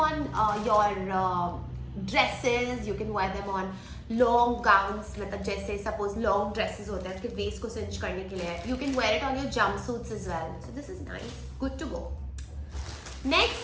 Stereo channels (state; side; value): identical; both; correlation 1.00